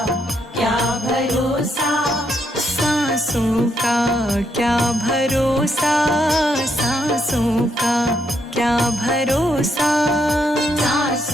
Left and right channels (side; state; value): both; normal; correlation 0.76